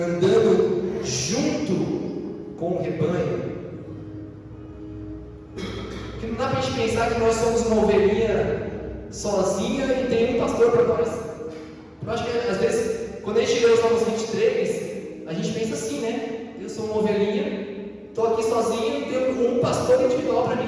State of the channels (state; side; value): identical; both; correlation 1.00